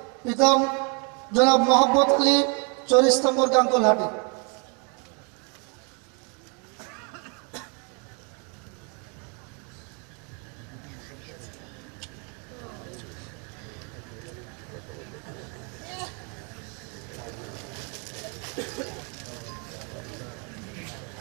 পিতা জনাব মোহাম্মদ আলী, 40 নম্বর গাঙ্গুলহাটি।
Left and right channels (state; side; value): quieter; left; 35.5 dB